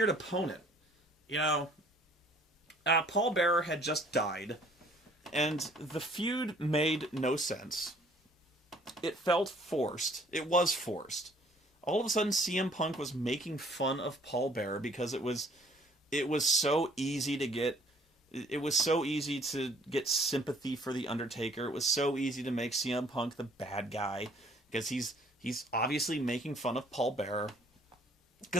opponent. Paul Bearer had just died, and the feud made no sense. It felt forced. It was forced. All of a sudden, CM Punk was making fun of Paul Bearer because it was so easy to get. It was so easy to get sympathy for the Undertaker. It was so easy to make CM Punk the bad guy because he's obviously making fun of Paul Bearer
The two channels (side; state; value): both; normal; correlation 0.58